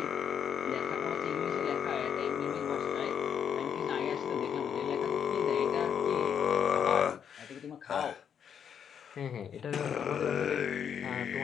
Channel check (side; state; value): right; quieter; 8.0 dB